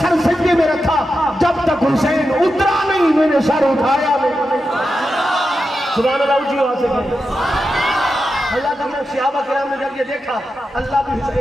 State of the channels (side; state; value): both; normal; correlation 0.89